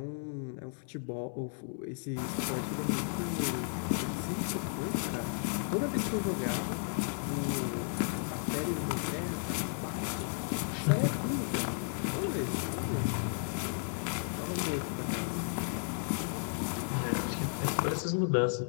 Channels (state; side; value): silent; right; 55 dB below the other